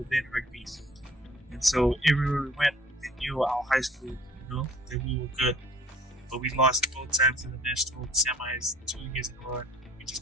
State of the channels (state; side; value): normal; both; correlation 0.53